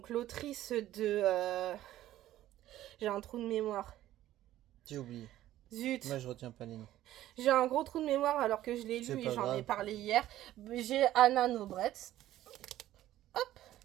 l'autrice de... J'ai un trou de mémoire. J'ai oublié. Zut. Moi, je retiens pas les noms. J'ai un gros trou de mémoire alors que je l'ai lu et j'en ai parlé hier. J'ai Anna Nobretz. Hop.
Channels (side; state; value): left; quieter; 13.8 dB